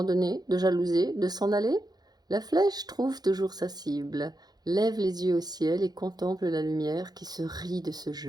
de jalouser, de s'en aller? La flèche trouve toujours sa cible, lève les yeux au ciel et contemple la lumière qui se rit de ce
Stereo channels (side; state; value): left; late; 0.19 ms